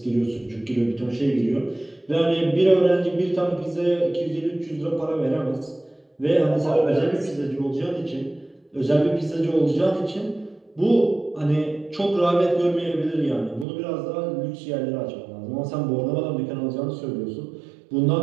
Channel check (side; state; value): left; drops out; at 13.7 s